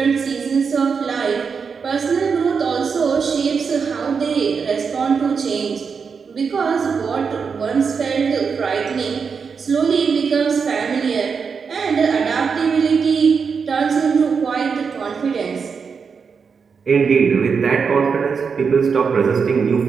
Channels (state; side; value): quieter; left; 5.8 dB